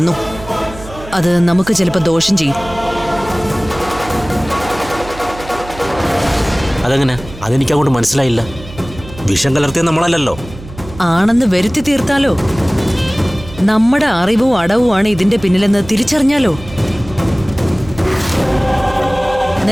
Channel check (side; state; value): right; noise; hum, 15 dB below the sound